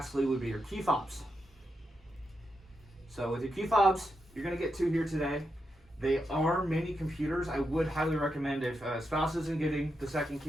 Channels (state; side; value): normal; both; correlation 0.85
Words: would be your key fobs. So with your key fobs, you're gonna get 2 here today. They are mini computers. I would highly recommend if a spouse isn't getting the second